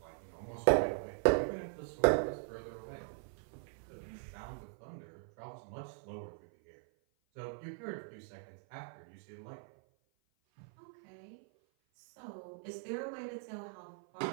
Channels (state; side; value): silent; left; 51 dB below the other